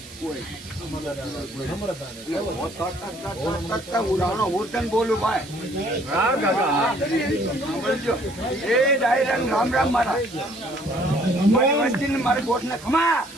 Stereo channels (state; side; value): noise; right; hiss, 19 dB below the sound